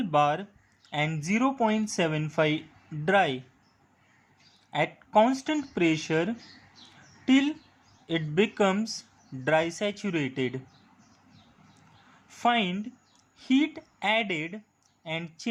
bar and 0.75 dry at constant pressure till it becomes dry saturated. Find heat added and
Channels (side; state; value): both; identical; correlation 1.00